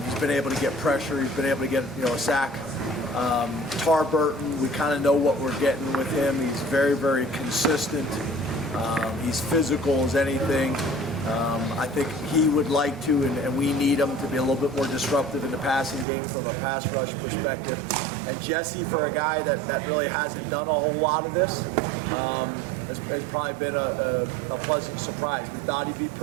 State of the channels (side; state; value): left; drops out; at 16.1 s